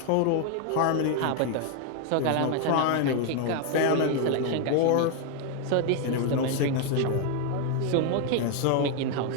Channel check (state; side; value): different; both; correlation 0.01